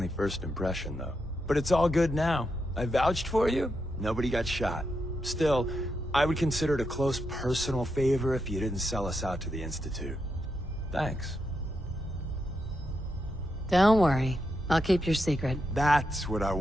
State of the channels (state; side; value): normal; both; correlation 0.84